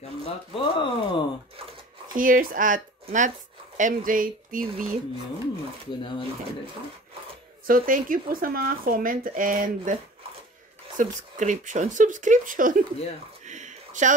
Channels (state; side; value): normal; both; correlation 0.43